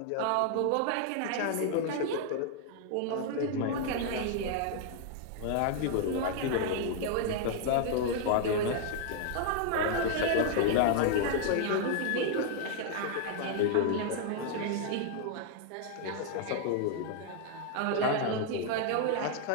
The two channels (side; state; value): both; different; correlation 0.00